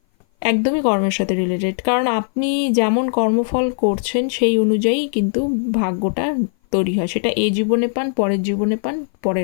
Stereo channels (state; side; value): silent; right; 58 dB below the other